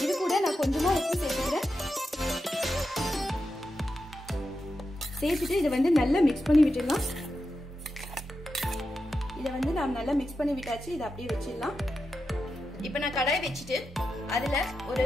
இது கூட நான் கொஞ்சமா உப்பு சேர்த்துக்கிறேன். சேர்த்துட்டு இதை வந்து நல்லா மிக்ஸ் பண்ணி விட்டுடலாம். இதை வந்து நான் நல்லா மிக்ஸ் பண்ணி விட்டாச்சு. இதை அப்படியே வச்சிடலாம். இப்போ நான் கடாய் வச்சுட்டு அதுல ஒரு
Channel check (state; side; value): normal; both; correlation 0.89